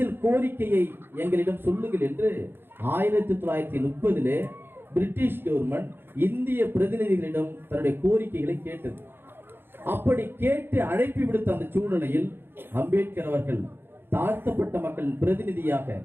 கோரிக்கையை எங்களிடம் சொல்லுங்கள் என்று 1930 பிரிட்டிஷ் கவர்மெண்ட் இந்திய பிரதிநிதிகளிடம் தன்னுடைய கோரிக்கைகளை கேட்டது. அப்படி கேட்டு அழைப்பு விடுத்த அந்த சூழ்நிலையில் அம்பேத்கர் அவர்கள் தாழ்த்தப்பட்ட மக்களின் பிரதிநிதியாக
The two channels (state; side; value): late; left; 0.10 ms